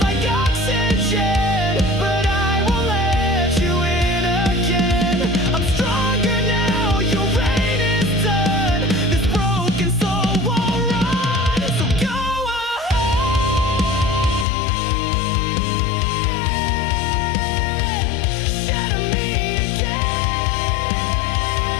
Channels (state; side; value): drops out; right; at 14.5 s